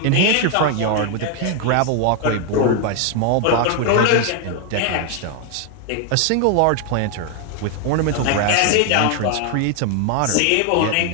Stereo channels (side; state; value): both; different; correlation 0.01